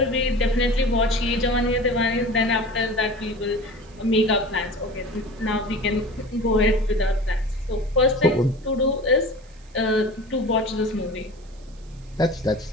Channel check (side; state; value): right; noise; hiss, 29 dB below the sound